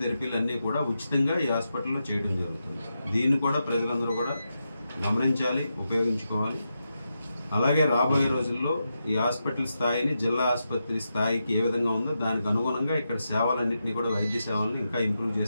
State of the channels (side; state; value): both; inverted; correlation -0.87